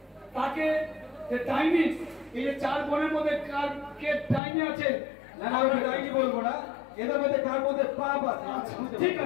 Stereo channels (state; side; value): drops out; right; at 4.4 s